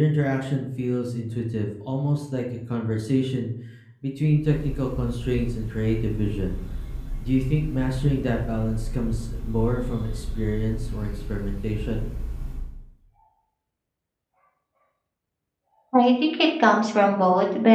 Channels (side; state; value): both; identical; correlation 1.00